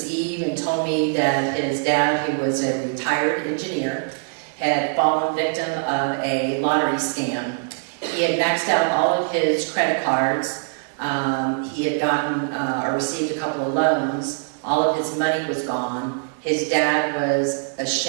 Eve and told me that his dad, who was a retired engineer, had fallen victim of a lottery scam. He had maxed out all of his credit cards. He had gotten or received a couple of loans. All of his money was gone. His dad was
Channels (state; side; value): silent; left; 58 dB below the other